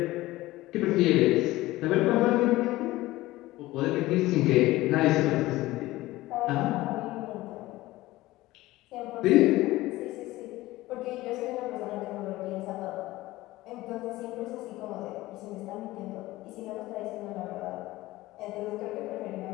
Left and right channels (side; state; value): right; quieter; 17.9 dB